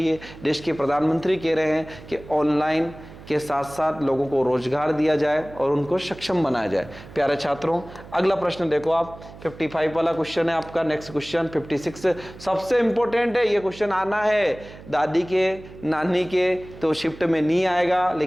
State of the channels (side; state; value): right; noise; hum, 18 dB below the sound